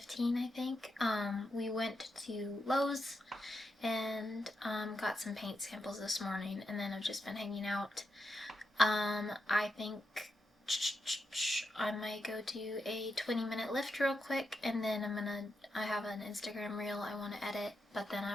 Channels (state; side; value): normal; both; correlation 0.85